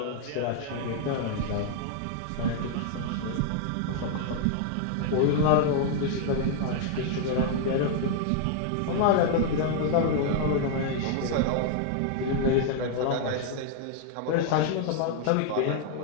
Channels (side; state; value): both; different; correlation 0.00